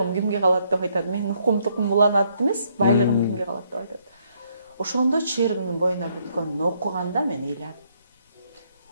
кимге калат деп айтат. Мен укум-тукум уланат эмес, байлыгым кимге калат деп айтат. Ошондо Чырдынын боюна бүткөнүн окуганда мен ыйладым.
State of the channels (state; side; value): inverted; both; correlation -0.71